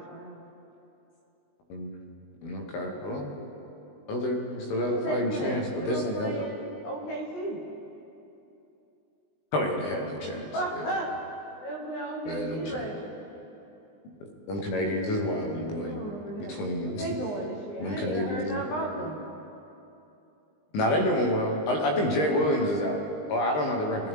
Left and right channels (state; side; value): late; right; 20 ms